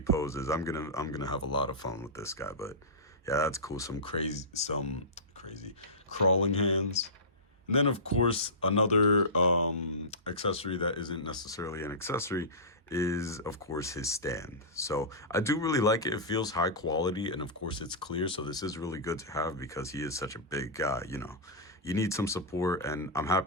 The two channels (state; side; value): normal; both; correlation -0.17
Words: I'm gonna have a lot of fun with this guy. But yeah, that's cool. Some crazy crawling hands. And then, of course, another accessory that isn't necessarily an accessory is, of course, his stand. So I do really like it. It feels high quality, and of course, it's clear. So this is really good to have because he is such a big guy, you know. You need some support, and I'm